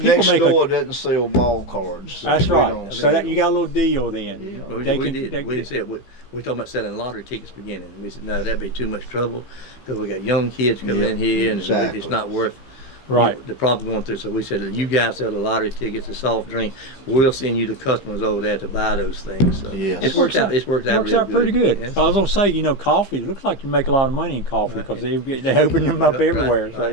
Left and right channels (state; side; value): late; right; 15 ms